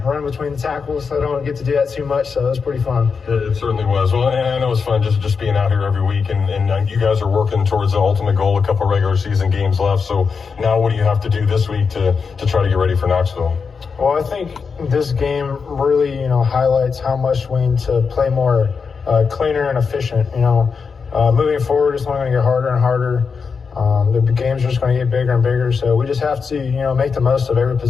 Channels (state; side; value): quieter; right; 5.5 dB